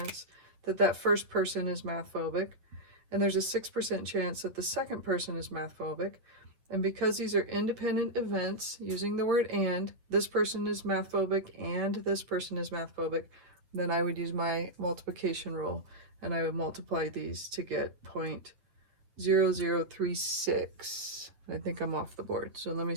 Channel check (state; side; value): late; left; 8.5 ms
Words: that that first person is math phobic, and there's a 6% chance that the second person is math phobic. And because these are independent events, using the word and, this person is math phobic and this person is math phobic, then I would use my multiplication rule and I would multiply these to get 0.0036. I think I'm off the board, so let me